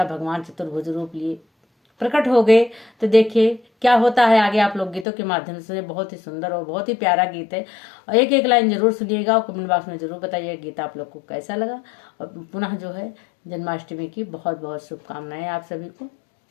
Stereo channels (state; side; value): drops out; right; at 5.1 s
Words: भगवान चतुर्भुज रूप लिए प्रकट हो गए। तो देखिए क्या होता है आगे, आप लोग गीतों के माध्यम से। बहुत ही सुंदर और बहुत ही प्यारा गीत है, और एक एक लाइन जरूर सुनिएगा और कमेंट बॉक्स में जरूर बताइए गीत आप लोग को कैसा लगा। और पुनः जो है जन्माष्टमी की बहुत बहुत शुभकामनाएं आप सभी को।